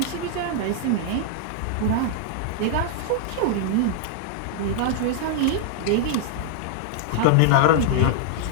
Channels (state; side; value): different; both; correlation -0.01